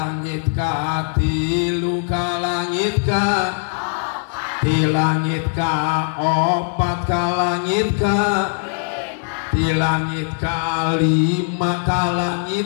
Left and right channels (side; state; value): right; silent; 66 dB below the other